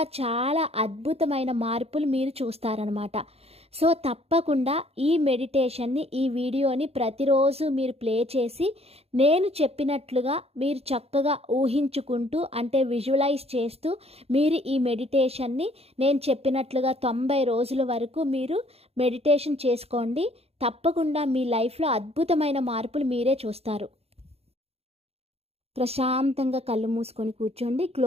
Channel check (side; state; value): left; late; 0.29 ms